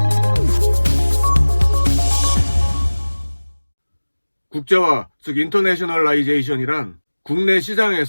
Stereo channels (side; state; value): both; inverted; correlation -1.00